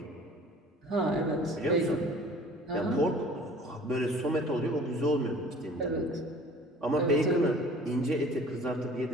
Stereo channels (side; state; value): both; normal; correlation 0.48